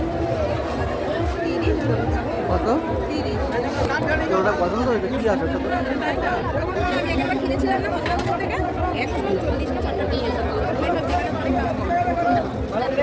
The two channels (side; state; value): both; identical; correlation 1.00